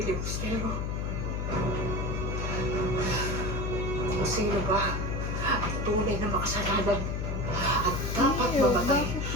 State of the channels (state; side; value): noise; left; hum, 1 dB below the sound